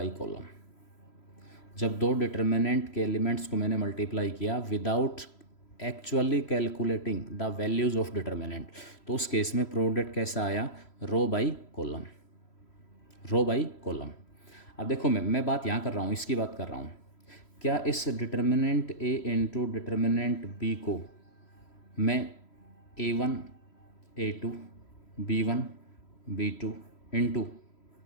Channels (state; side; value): late; right; 3.0 ms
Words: कॉलम। जब दो डिटर्मिनेंट के एलिमेंट्स को मैंने मल्टीप्लाई किया without actually calculating the values of determinant, तो उस केस में प्रोडक्ट कैसा आया, row by column, row by column. अब देखो मैं बात यहाँ कर रहा हूँ, इसकी बात कर रहा हूँ। क्या इस determinant A into determinant B को मैं A1 A2 B1 B2 into